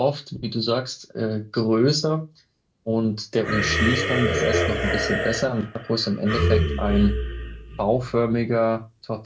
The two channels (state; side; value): identical; both; correlation 1.00